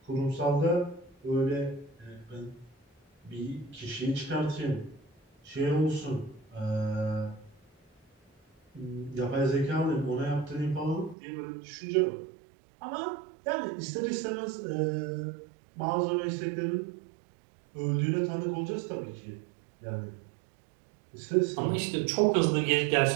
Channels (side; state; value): left; drops out; at 11.2 s